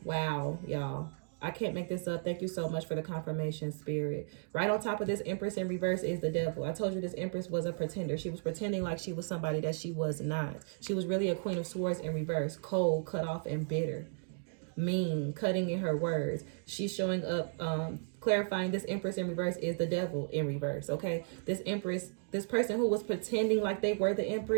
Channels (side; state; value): left; silent; digital silence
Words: Wow, y'all. I can't make this up. Thank you so much for the confirmation, Spirit. Right on top of this Empress in reverse is the Devil. I told you this Empress was a pretender. She was pretending like she was somebody that she was not. She was really a Queen of Swords in reverse. Cold, cut off, and bitter. mean, cutting in her words. She's showing up, clarifying this Empress in reverse is the devil in reverse, okay? This Empress, this person who was pretending like they were the